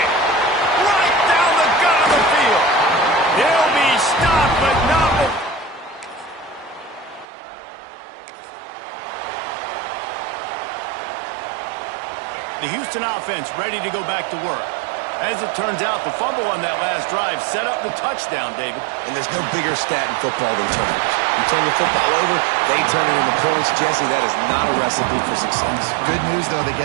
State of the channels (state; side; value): drops out; left; at 7.2 s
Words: Right down the gut of the field. He'll be stopped, but not before. The Houston offense ready to go back to work. As it turns out, the fumble on that last drive set up the touchdown, David. And there's no bigger stat in football than turnovers. You turn the football over, they turn it into points. Jesse, that is not a recipe for success. Good news, though, they